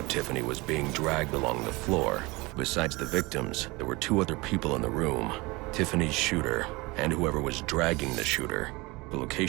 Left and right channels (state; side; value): quieter; left; 23.9 dB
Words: Tiffany was being dragged along the floor. Besides the victims, there were two other people in the room. Tiffany's shooter, and whoever was dragging the shooter. The